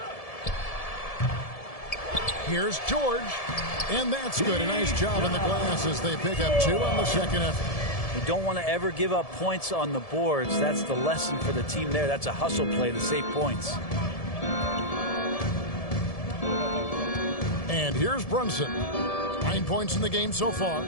Here's George. And that's good. A nice job in the glass as they pick up 2 on the second effort. You don't want to ever give up points on the boards. That's the lesson for the team there. That's a hustle play to save points. And here's Brunson. 9 points in the game so far.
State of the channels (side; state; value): right; late; 1.7 ms